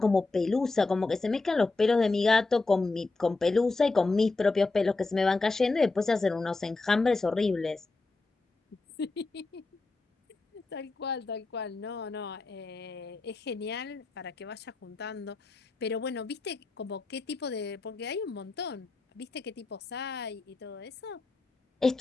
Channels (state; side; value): quieter; right; 3.5 dB